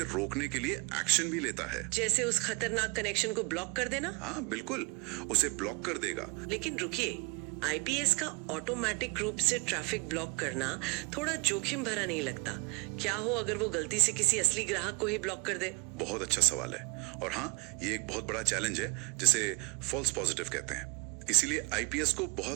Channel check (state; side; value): quieter; left; 30.2 dB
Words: रोकने के लिए एक्शन भी लेता है। जैसे उस खतरनाक कनेक्शन को ब्लॉक कर देना? हाँ बिल्कुल, उसे ब्लॉक कर देगा। लेकिन रुकिए, IPS का ऑटोमेटिक रूप से ट्रैफिक ब्लॉक करना थोड़ा जोखिम भरा नहीं लगता? क्या हो अगर वो गलती से किसी असली ग्राहक को ही ब्लॉक कर दे? बहुत अच्छा सवाल है, और हाँ, ये एक बहुत बड़ा चैलेंज है जिसे फॉल्स पॉजिटिव कहते हैं। इसीलिए IPS को